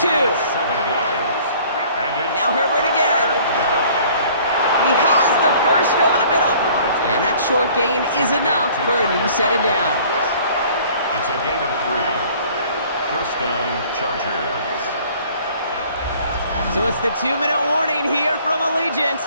7 yards. And it's Now Herbert again. He has the first over the middle. And that short gain is enough for a new set of downs. It's a gain of 3. First down, Chargers. So it's the 2-minute warning here from Allegiant.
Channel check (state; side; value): inverted; both; correlation -0.53